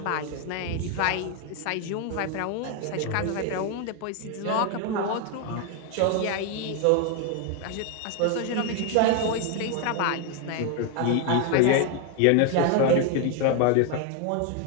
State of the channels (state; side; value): different; both; correlation 0.01